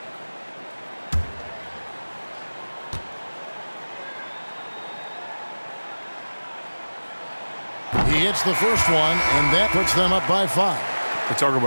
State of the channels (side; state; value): both; inverted; correlation -1.00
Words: He hits the first one, and that puts them up by 5. We talk